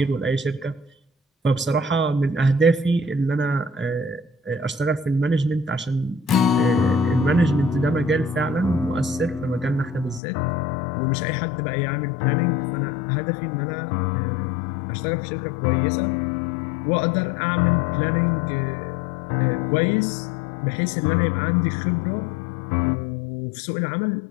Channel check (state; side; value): drops out; right; at 10.2 s